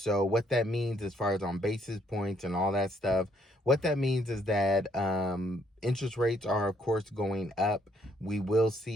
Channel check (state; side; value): normal; both; correlation 0.69